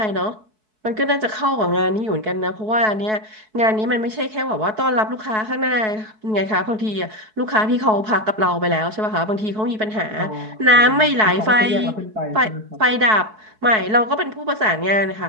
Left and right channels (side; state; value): left; late; 4.6 ms